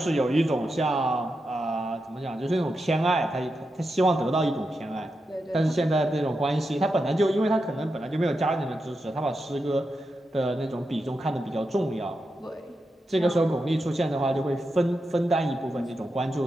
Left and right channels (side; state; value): both; normal; correlation 0.87